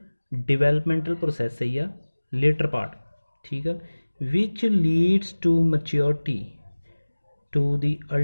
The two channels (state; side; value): inverted; both; correlation -1.00